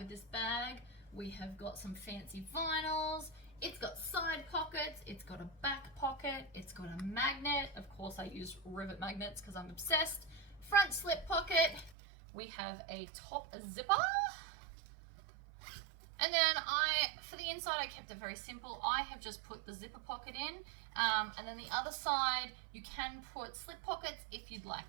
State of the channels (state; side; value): drops out; left; at 12.0 s